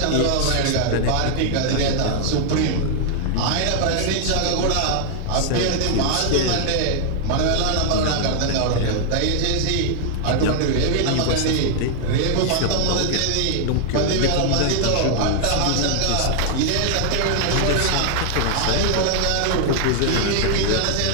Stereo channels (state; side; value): different; both; correlation 0.00